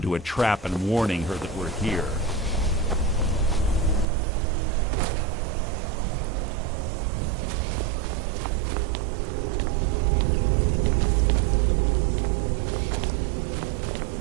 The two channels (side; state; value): left; drops out; at 4.0 s